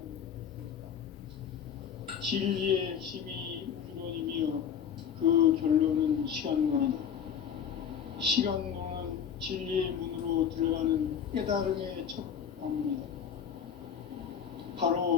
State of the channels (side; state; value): right; quieter; 8.0 dB